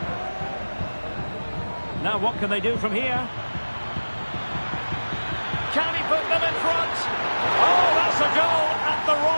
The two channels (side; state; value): both; inverted; correlation -1.00